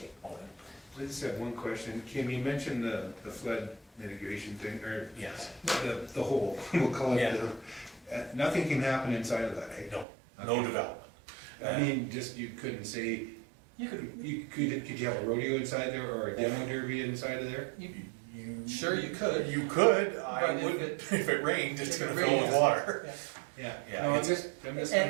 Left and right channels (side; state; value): left; drops out; at 10.1 s